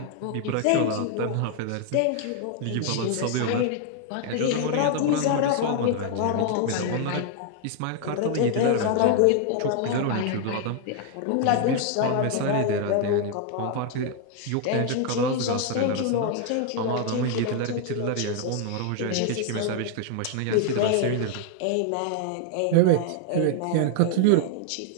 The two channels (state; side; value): different; both; correlation 0.00